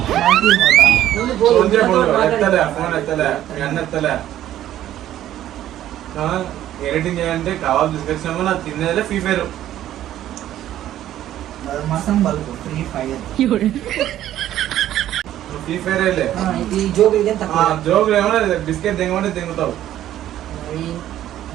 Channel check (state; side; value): quieter; left; 12.5 dB